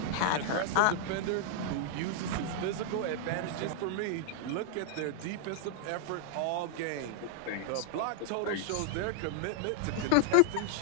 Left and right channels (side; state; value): both; different; correlation -0.01